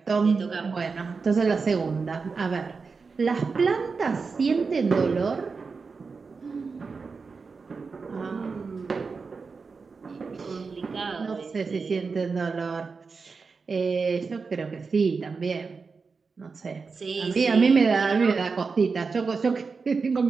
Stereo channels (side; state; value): left; quieter; 4.8 dB